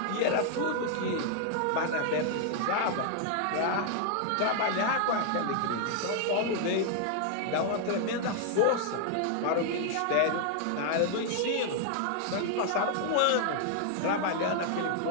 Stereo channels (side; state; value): both; different; correlation 0.00